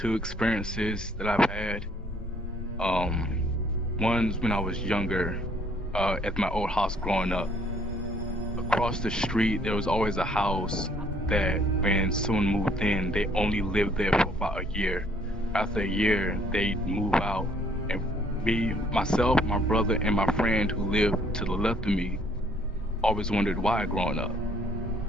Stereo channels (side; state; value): both; normal; correlation 0.62